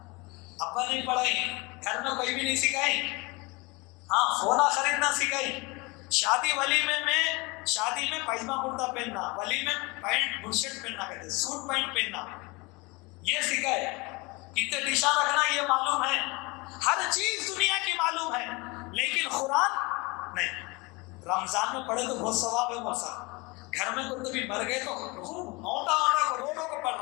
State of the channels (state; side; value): quieter; right; 25.9 dB